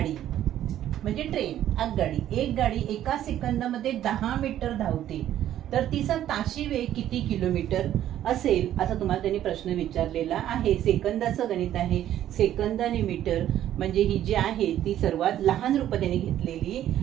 म्हणजे ट्रेन, आगगाडी, एक गाडी एका सेकंदामध्ये 10 मीटर धावते, तर तिचा ताशी वेग किती किलोमीटर असेल असा तुम्हाला त्यांनी प्रश्न विचारलेला आहे. सेकंदाचं गणित आहे. सेकंद आणि मीटर म्हणजे ही जी आहे ती सर्वात लहान रूप त्यांनी घेतलेली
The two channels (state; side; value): quieter; left; 11.9 dB